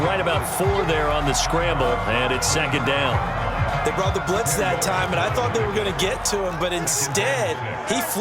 right about 4 there on the scramble, and it's second down. They brought the blitz that time, and I thought they were going to get to him, but instead, he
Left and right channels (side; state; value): both; identical; correlation 1.00